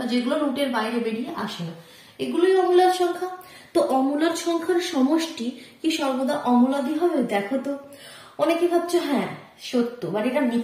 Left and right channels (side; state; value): both; identical; correlation 1.00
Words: যেগুলো রুটের বাইরে বেরিয়ে আসে না, এগুলোই অমূলদ সংখ্যা। তো অমূলদ সংখ্যার সমষ্টি কি সর্বদা অমূলদই হবে? দেখো তো, অনেকে ভাবছো হ্যাঁ সত্য, বাট এটা